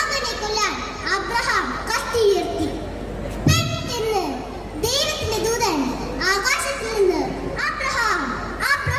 കൊല്ലാൻ അബ്രഹാം കത്തി ഉയർത്തി. പെട്ടെന്ന് ദൈവത്തിന്റെ ദൂതൻ ആകാശത്തിൽ നിന്ന് അബ്രഹാം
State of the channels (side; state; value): both; identical; correlation 1.00